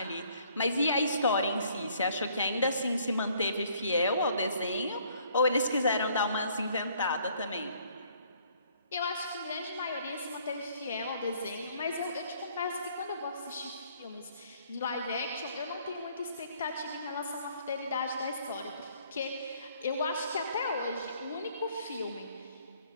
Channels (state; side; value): inverted; both; correlation -0.62